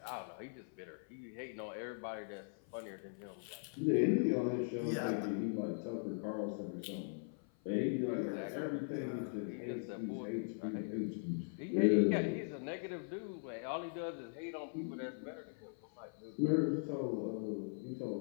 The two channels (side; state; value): right; silent; 51 dB below the other